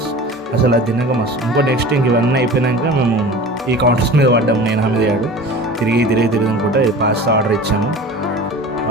అసలు అది తిన్నాక మస్తు. నెక్స్ట్ ఇవన్నీ అయిపోయినాక మేము ఈ కౌంటర్స్ మీద పడ్డాము. నేను హమీద్ తిరిగి అనుకుంటా ఇది పాస్తా ఆర్డర్ ఇచ్చాము.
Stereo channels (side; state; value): both; normal; correlation 0.38